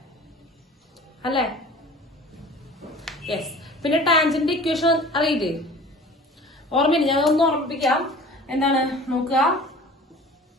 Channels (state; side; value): normal; both; correlation 0.43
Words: യെസ്. പിന്നെ ടാൻജന്റ് ഇക്വേഷൻ അറിയില്ലേ? ഓർമ്മയില്ല, ഞാൻ ഒന്ന് ഓർമ്മിപ്പിക്കാം. എന്താണ് നോക്കുക,